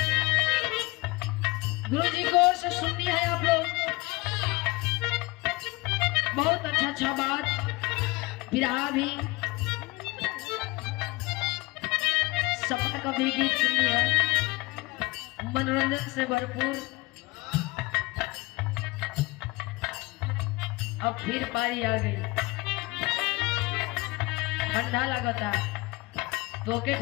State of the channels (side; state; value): right; quieter; 22.6 dB